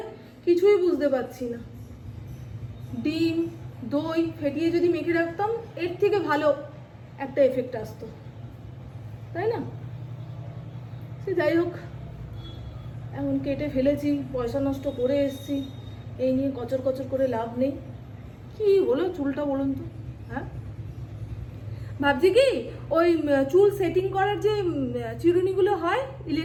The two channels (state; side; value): identical; both; correlation 1.00